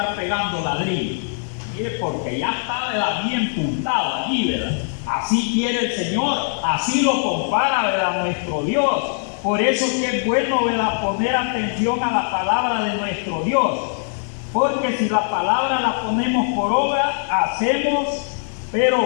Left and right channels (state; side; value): silent; right; digital silence